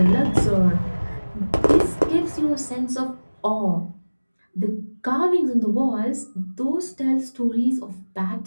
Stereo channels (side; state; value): both; inverted; correlation -1.00